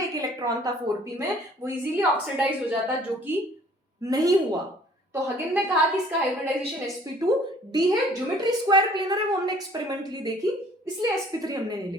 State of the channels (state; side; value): normal; both; correlation 0.56